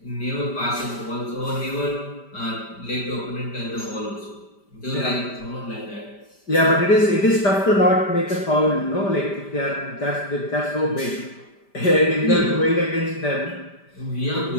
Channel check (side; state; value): right; late; 5.1 ms